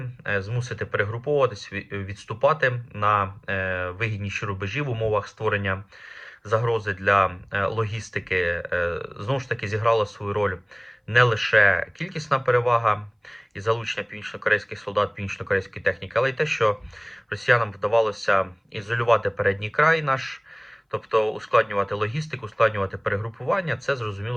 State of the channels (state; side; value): identical; both; correlation 1.00